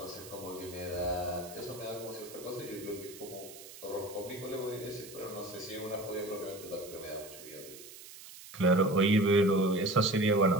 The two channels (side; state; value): right; noise; hiss, 16 dB below the sound